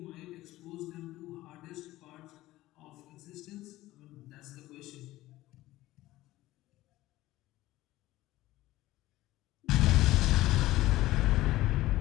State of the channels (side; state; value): right; quieter; 16.7 dB